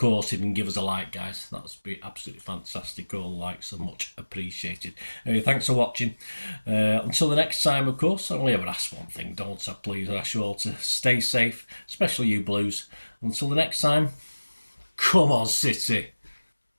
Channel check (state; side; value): inverted; both; correlation -1.00